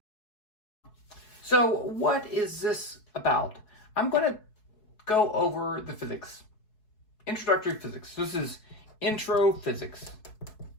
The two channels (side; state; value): right; late; 4.7 ms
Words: So what is this about? I'm going to go over the physics. Introductory physics. This is intro physics.